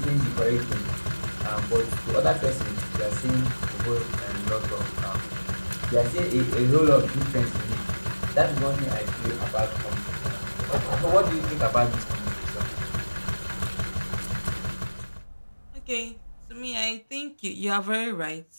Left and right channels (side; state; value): both; inverted; correlation -1.00